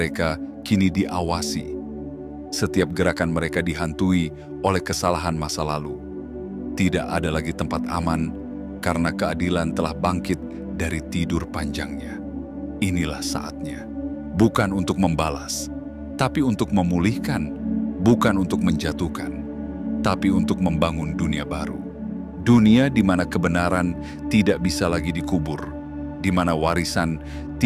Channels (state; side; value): identical; both; correlation 1.00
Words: kini diawasi. Setiap gerakan mereka dihantui oleh kesalahan masa lalu. Tidak ada lagi tempat aman, karena keadilan telah bangkit dari tidur panjangnya. Inilah saatnya. Bukan untuk membalas, tapi untuk memulihkan. Bukan untuk menjatuhkan, tapi untuk membangun dunia baru. Dunia di mana kebenaran tidak bisa lagi dikubur, di mana warisan